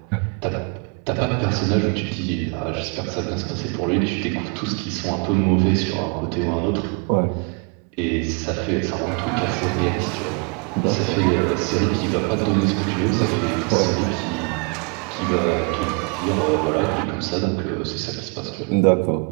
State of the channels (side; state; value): left; quieter; 35.1 dB